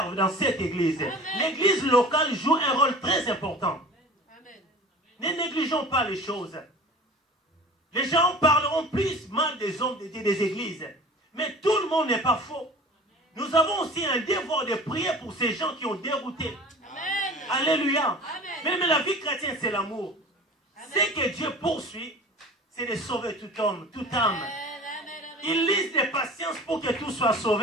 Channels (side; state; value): both; normal; correlation 0.40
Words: dans cette église. L'église locale joue un rôle très important. Amen. Ne négligeons pas les choses. Les gens parleront plus mal des hommes de Dieu, des églises. Mais tout le monde n'est pas faux. nous avons aussi un devoir de prier pour ces gens qui ont dérouté. Amen. Alléluia. Amen. Mais la vie chrétienne, c'est l'amour. Ce que Dieu poursuit, c'est de sauver tout homme, toute âme. Il lise de patience pour que tout soit